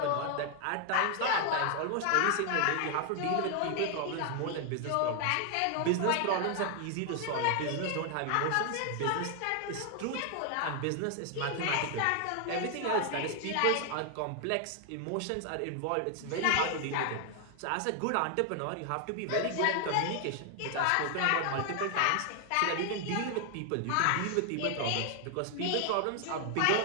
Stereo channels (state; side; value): different; both; correlation 0.00